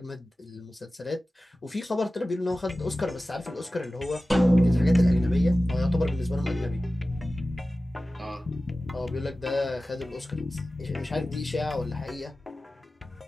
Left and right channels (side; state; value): both; normal; correlation 0.96